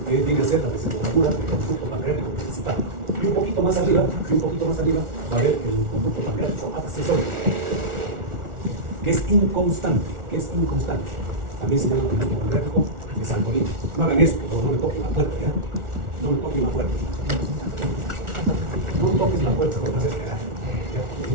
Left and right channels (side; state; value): left; late; 1.4 ms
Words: que viene a ser la desembocadura del conducto pancreático principal. Y un poquito más arriba, va a haber el conducto pancreático accesorio, que es inconstante, También se llama conducto pancreático de Santorini. No hagan esto, no me toquen la puerta, ¿ya? No me toquen la puerta. No me toques la puerta, porque vas a esperar.